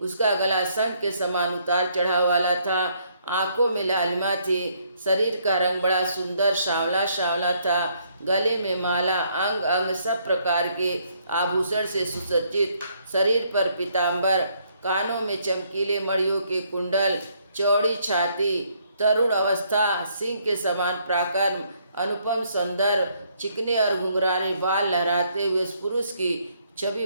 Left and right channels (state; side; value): inverted; both; correlation -0.69